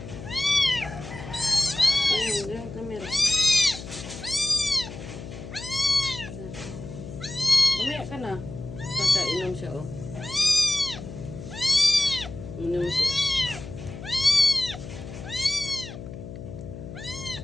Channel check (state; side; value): noise; left; hum, 11 dB below the sound